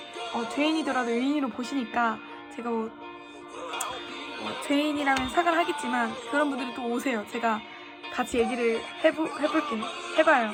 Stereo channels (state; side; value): identical; both; correlation 1.00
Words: 죄인이더라도 의인으로 보시니까 제가 죄인이라면 사과를 하겠지만 그런 분들이 또 오세요. 제가 같이 얘기를 해봐요.